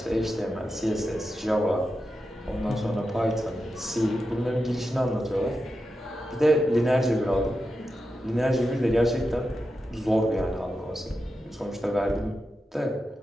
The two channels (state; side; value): normal; both; correlation 0.89